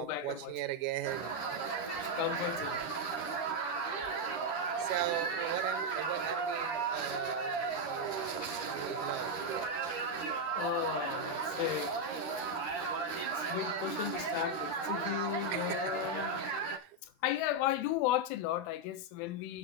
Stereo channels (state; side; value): late; right; 13 ms